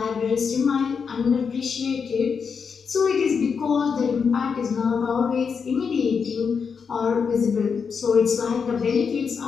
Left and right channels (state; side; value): quieter; right; 6.0 dB